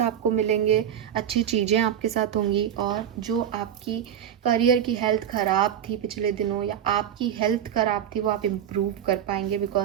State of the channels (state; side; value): quieter; left; 9.6 dB